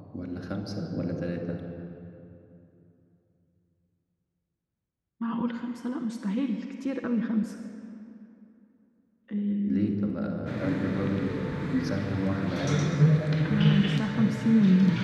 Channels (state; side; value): identical; both; correlation 1.00